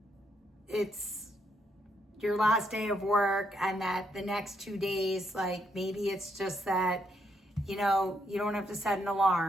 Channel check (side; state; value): both; normal; correlation 0.75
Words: it's your last day of work and that the next 2 days, like maybe it's just that, you don't have to set an